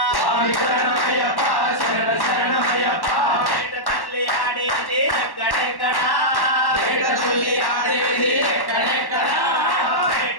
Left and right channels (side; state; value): right; late; 1.1 ms